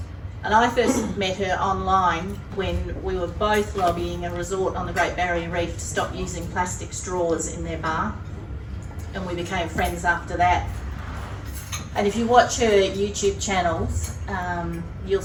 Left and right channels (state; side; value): identical; both; correlation 1.00